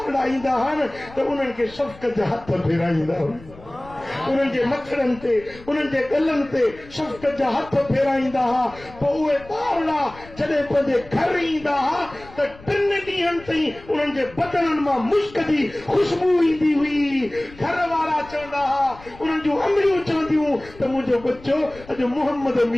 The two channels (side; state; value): left; noise; rumble, 20 dB below the sound